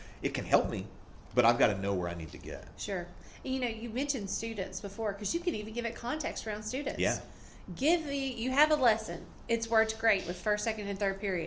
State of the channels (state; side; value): identical; both; correlation 1.00